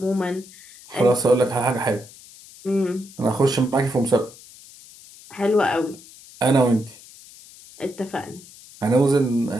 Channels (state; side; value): noise; left; hiss, 21 dB below the sound